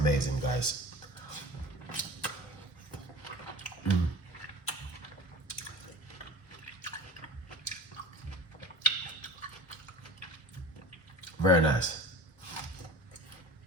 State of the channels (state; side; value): normal; both; correlation 0.37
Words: guys. Very nice.